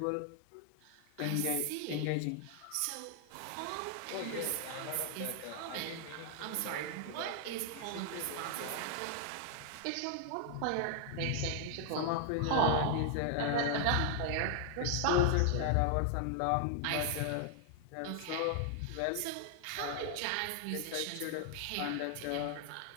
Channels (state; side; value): different; both; correlation 0.00